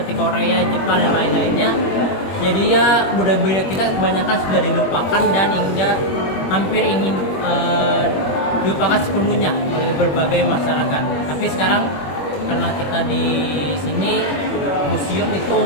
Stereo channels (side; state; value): right; late; 21 ms